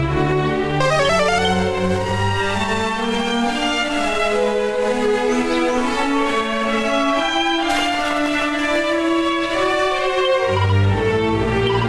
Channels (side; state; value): both; identical; correlation 1.00